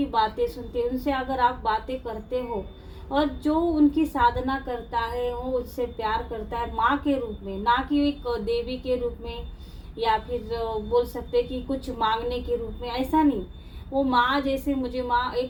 बातें सुनती है। उनसे अगर आप बातें करते हो और जो उनकी साधना करता है वो उससे प्यार करता है माँ के रूप में, ना कि एक देवी के रूप में, या फिर बोल सकते कि कुछ मांगने के रूप में, ऐसा नहीं। वो माँ जैसे मुझे माँ,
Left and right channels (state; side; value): identical; both; correlation 1.00